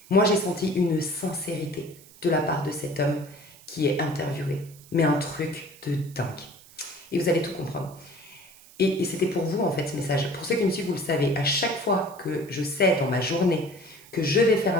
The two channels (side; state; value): right; noise; hiss, 23 dB below the sound